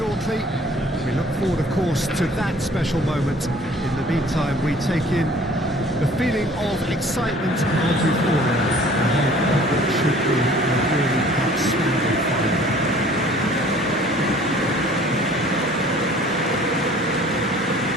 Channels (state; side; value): normal; both; correlation 0.52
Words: We look forward, of course, to that special moment. In the meantime, we take in the feeling of excitement and euphoria ahead of what should be a really outstanding final.